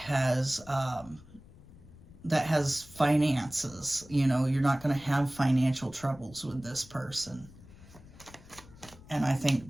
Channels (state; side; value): noise; left; rumble, 21 dB below the sound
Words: finances. You know, you're not going to have financial troubles with this person. And I think